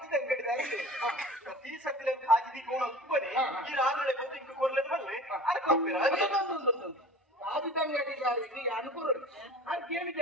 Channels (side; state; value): both; normal; correlation 0.40